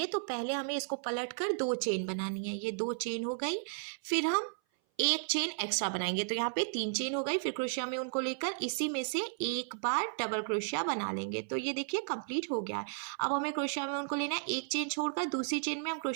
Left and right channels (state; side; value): silent; left; 55 dB below the other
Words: तो पहले हमें इसको पलट कर 2 चेन बनानी है। ये 2 चेन हो गई। फिर हम एक चेन एक्स्ट्रा बनाएंगे तो यहाँ पे 3 चेन हो गई। फिर क्रोशिया में उनको लेकर इसी में से एक बार डबल क्रोशिया बना लेंगे। तो ये देखिए कंप्लीट हो गया है। अब हमें क्रोशिया में उनको लेना है। एक चेन छोड़कर दूसरी चेन में हम